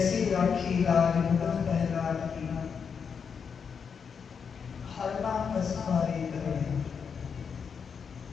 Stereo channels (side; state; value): right; quieter; 6.4 dB